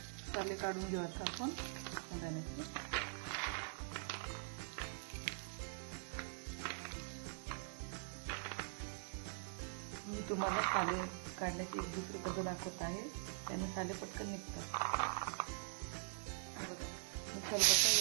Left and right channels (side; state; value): left; silent; digital silence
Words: साले काढून घेऊ आता आपण शेंगदाण्याचे। मी तुम्हाला साले काढण्याची एक दुसरी पद्धत दाखवत आहे, त्याने साले पटकन निघतात। बघा, मी खलबत्ता